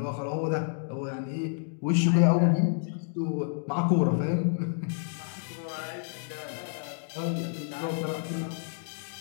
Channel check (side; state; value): right; silent; digital silence